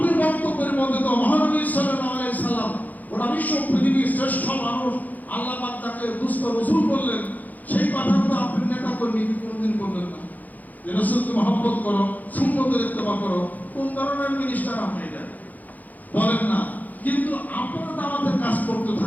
বক্তব্যের মধ্যে তো মহানবী সাল্লাল্লাহু আলাইহি সাল্লাম গোটা বিশ্ব পৃথিবীর শ্রেষ্ঠ মানুষ, আল্লাহ পাক তাকে দুস্থ রাসূল বললেন, সেই কথা তো আপনি নেতা কর্মী কোনদিন বললেন না যে রাসূলকে মহব্বত করো, সুন্নতের ইত্তেবা করো। কোন ধরনের মিনিস্টার আপনি এটা বলেন না? কিন্তু আপনারা দাওয়াতের কাজ করতে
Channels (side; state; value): right; late; 0.081 ms